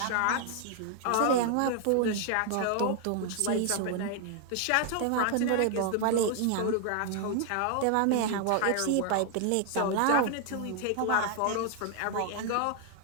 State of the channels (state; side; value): different; both; correlation 0.00